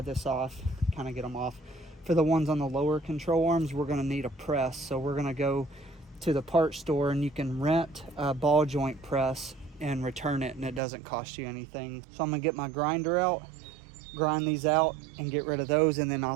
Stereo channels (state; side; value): drops out; left; at 10.8 s